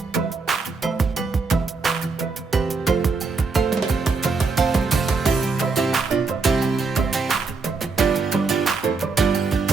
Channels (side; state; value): left; quieter; 4.3 dB